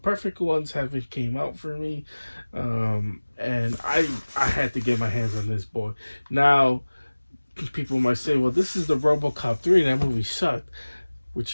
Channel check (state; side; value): inverted; both; correlation -1.00